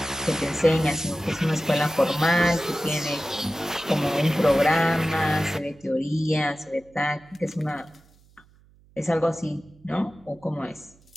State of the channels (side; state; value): right; noise; hum, 29 dB below the sound